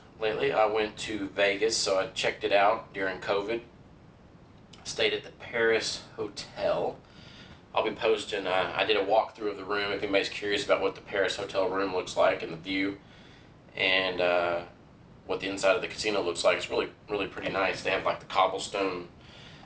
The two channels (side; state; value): both; identical; correlation 1.00